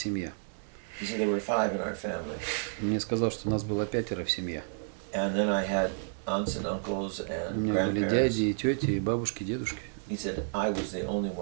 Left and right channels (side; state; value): left; silent; 57 dB below the other